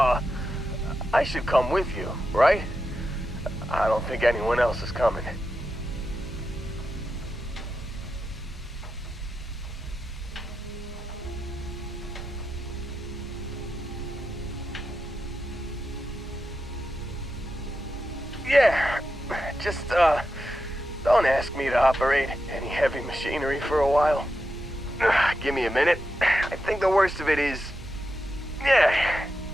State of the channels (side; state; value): both; normal; correlation 0.88